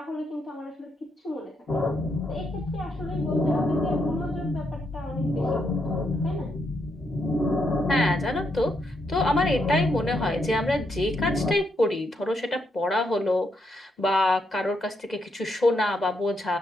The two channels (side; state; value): both; normal; correlation 0.79